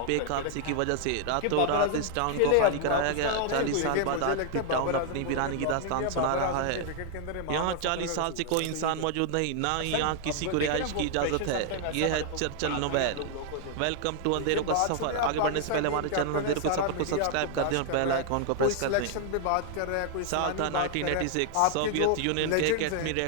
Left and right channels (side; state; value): both; different; correlation 0.00